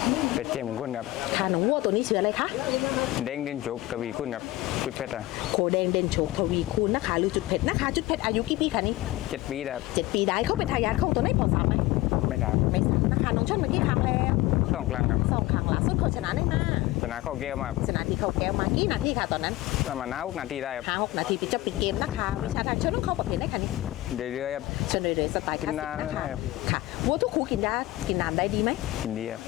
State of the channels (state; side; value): quieter; right; 17.8 dB